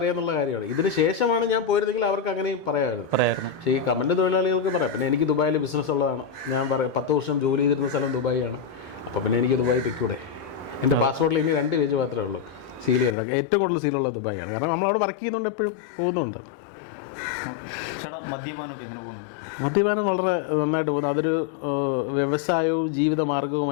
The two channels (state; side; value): drops out; right; at 13.2 s